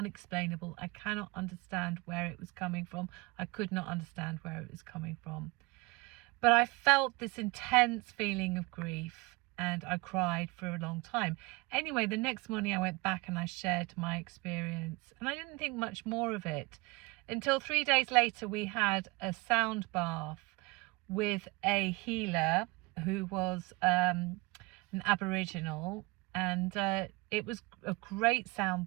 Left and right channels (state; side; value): quieter; left; 24.9 dB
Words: I cannot understand where it was coming from. I could not understand where it was coming from. But I felt this intense feeling of grief, and I cried for a long time. Anyway, the next morning I went back and I shared my experience, and I didn't think much more of it until 3 days later we had a sound bath with a healer who was an Aboriginal, and it was a great sound